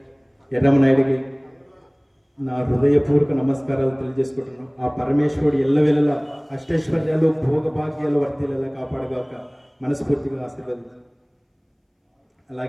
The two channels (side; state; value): both; identical; correlation 1.00